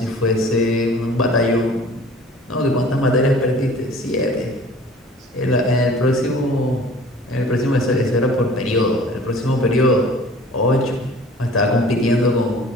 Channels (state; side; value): normal; both; correlation 0.47